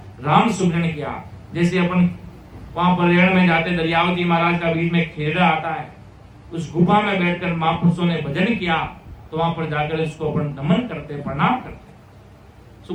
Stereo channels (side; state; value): both; identical; correlation 1.00